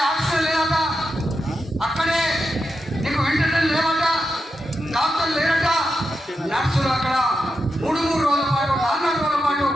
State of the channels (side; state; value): both; normal; correlation 0.87